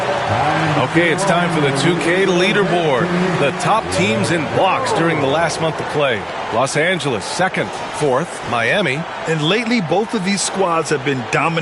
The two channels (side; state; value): both; identical; correlation 1.00